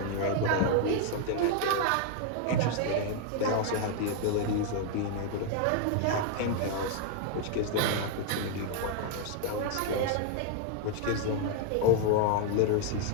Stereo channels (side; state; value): both; different; correlation 0.00